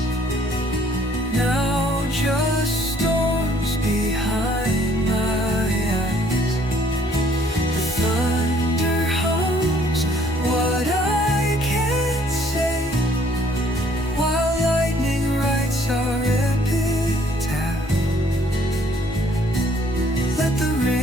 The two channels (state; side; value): normal; both; correlation 0.62